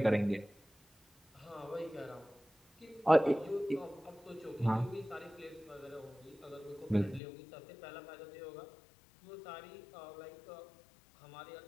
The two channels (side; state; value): right; drops out; at 7.2 s